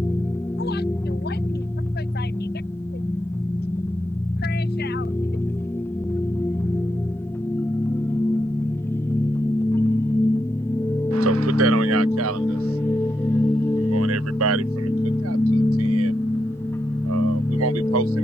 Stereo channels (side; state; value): both; normal; correlation 0.84